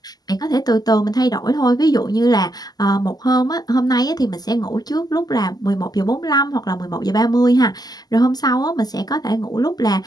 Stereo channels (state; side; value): late; right; 0.19 ms